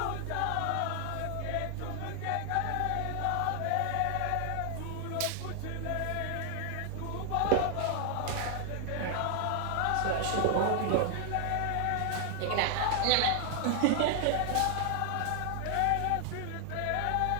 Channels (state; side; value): different; both; correlation 0.00